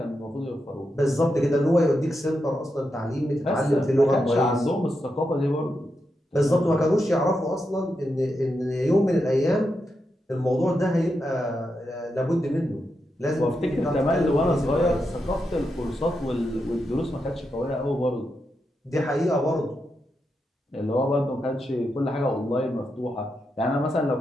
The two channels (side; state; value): both; normal; correlation 0.86